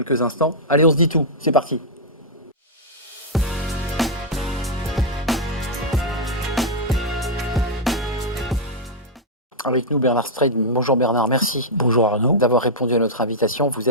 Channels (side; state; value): both; normal; correlation -0.06